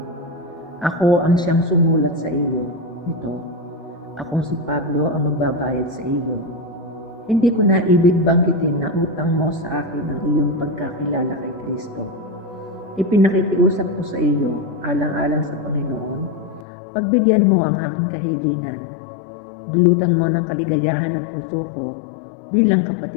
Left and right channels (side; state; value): right; drops out; at 16.7 s